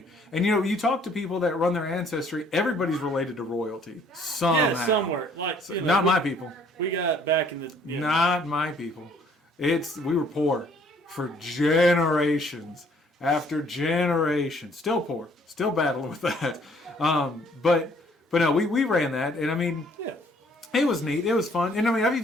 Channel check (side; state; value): both; normal; correlation 0.61